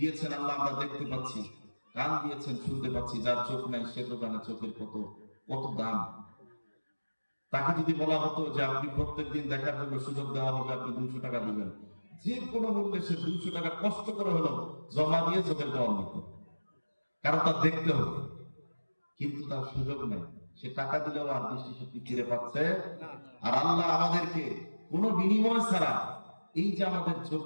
আল্লাহ, আমরা দেখতে পাচ্ছি। কান দিয়েছেন, শুনতে পাচ্ছি। যার চোখ নাই সে তো জানে চোখের কত কত দাম। তাকে যদি বলা হতো যে আপনি প্রত্যেকদিন দেখার জন্য সুযোগ দেওয়া হবে, আপনি 200 টাকা দিবেন, যে কোনো মূল্যে সে 200 টাকা কষ্ট করে হলো জমা দিয়ে চোখের পাওয়া নিত, কারণ তার দেখতে হবে। কিন্তু তার সুযোগ নেই, সে টাকা দিলেও আর দৃষ্টিশক্তি ফিরে পাচ্ছে। আর আল্লাহ আমাদেরকে কোনো বিনিময় ছাড়া এই যে আমাদের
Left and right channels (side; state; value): both; inverted; correlation -1.00